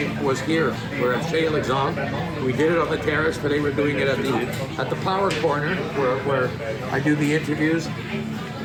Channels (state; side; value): identical; both; correlation 1.00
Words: was here. We're at Chez Alexandre. We did it on the terrace, but they were doing it at the Power Corner, where I do the interviews.